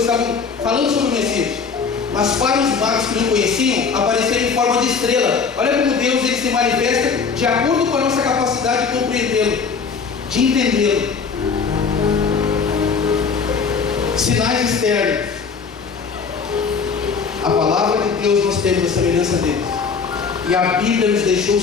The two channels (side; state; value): right; quieter; 5.5 dB